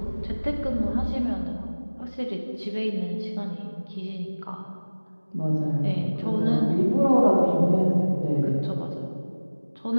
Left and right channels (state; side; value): inverted; both; correlation -1.00